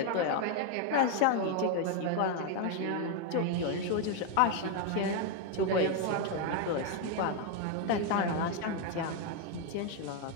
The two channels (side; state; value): both; different; correlation 0.01